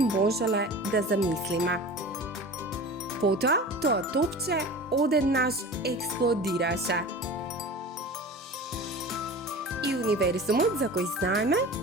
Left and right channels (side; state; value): both; normal; correlation 0.36